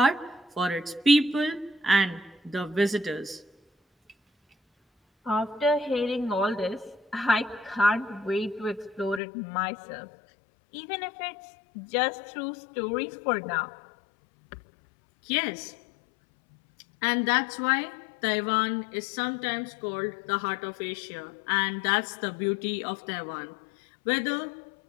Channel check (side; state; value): right; drops out; at 9.2 s